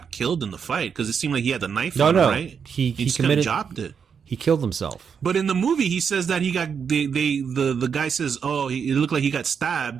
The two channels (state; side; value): quieter; left; 6.8 dB